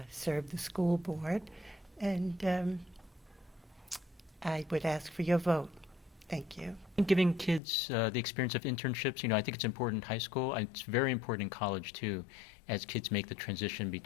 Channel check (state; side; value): drops out; right; at 7.6 s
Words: serve the school board, and I would ask for your vote. Thank you. Giving kids the experience of internships, I think it's important in high school. And it's very important in college too, as kids make the transition